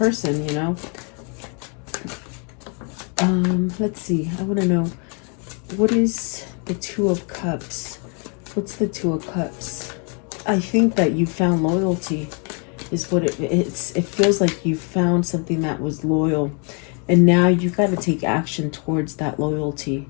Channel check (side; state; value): right; quieter; 37.5 dB